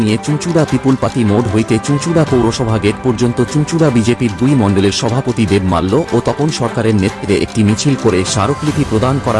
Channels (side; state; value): both; identical; correlation 1.00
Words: নিয়ে চুঁচুড়া পিপুলপাতি মোড় হইতে চুঁচুড়া পৌরসভা গেট পর্যন্ত চুঁচুড়া বিজেপির 2 মণ্ডলের সভাপতি দেব মাল্য ও তপন সরকারের নেতৃত্বে একটি মিছিল করে স্মারকলিপি প্রদান